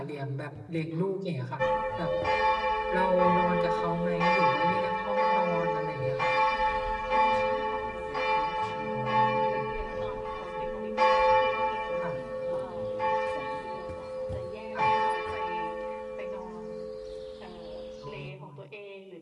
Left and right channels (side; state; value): both; identical; correlation 1.00